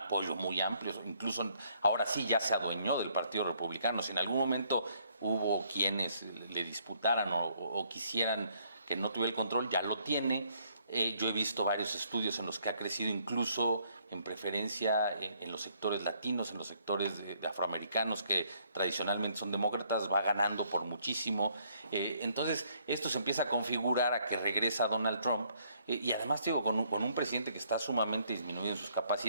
muy amplio, incluso ahora sí ya se adueñó del Partido Republicano. Si en algún momento hubo quienes le disputaran o quisieran que no tuviera el control, ya lo tiene. Yo he visto varios estudios en los que ha crecido incluso en preferencia en los sectores latinos, en los sectores de afroamericanos que tradicionalmente son demócratas, va ganando por muchísimo. Entonces esto se empieza a configurar a que regresa Donald Trump y además digo, con un presidente que está sumamente disminuido en sus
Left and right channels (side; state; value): both; inverted; correlation -0.67